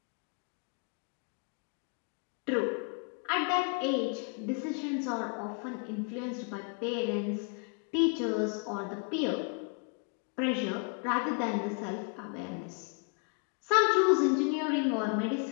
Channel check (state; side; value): quieter; right; 39.8 dB